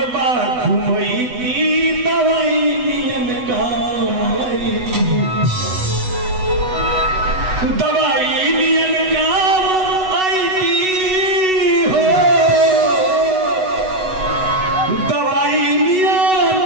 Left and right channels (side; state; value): left; late; 8.0 ms